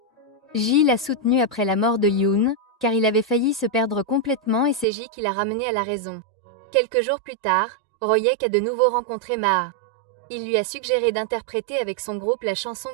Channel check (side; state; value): left; drops out; at 4.9 s